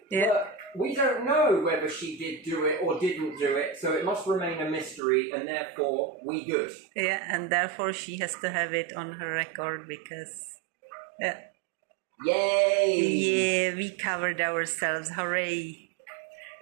But we don't know whether she did do it or didn't do it, so it must remain a mystery, and therefore, we good. And therefore she has to have it on her record because... Yay! We covered ourselves, hooray!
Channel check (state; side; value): drops out; left; at 5.0 s